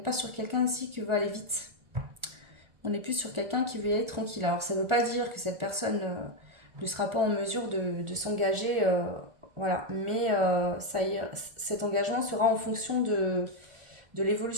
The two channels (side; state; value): left; late; 1.4 ms